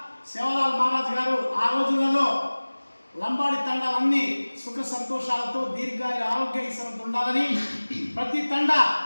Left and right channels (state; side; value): inverted; both; correlation -1.00